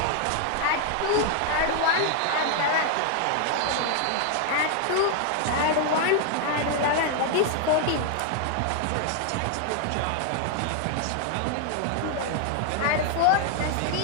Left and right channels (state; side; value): different; both; correlation 0.00